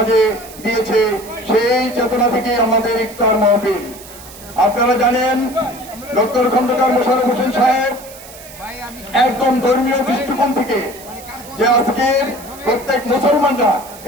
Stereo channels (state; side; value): noise; right; hiss, 18 dB below the sound